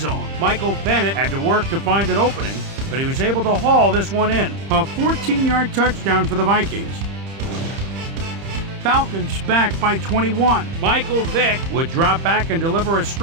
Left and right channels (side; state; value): left; late; 30 ms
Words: Michael Bennett had to work to find an opening, but he was able to haul this one in. A 14-yard touchdown for the Vikings. Falcons back by 21. Michael Vick would drop back and deliver a